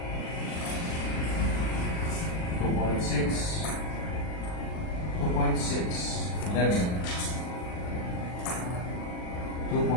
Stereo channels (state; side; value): late; right; 39 ms